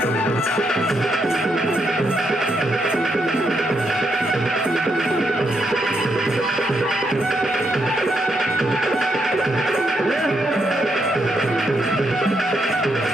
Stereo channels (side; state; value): both; normal; correlation 0.79